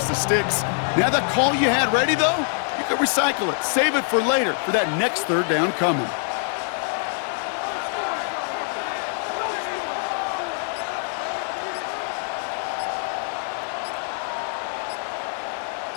the sticks. Now that call you had ready, though, you can recycle it. Save it for later for that next 3rd down coming.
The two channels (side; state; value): right; silent; 62 dB below the other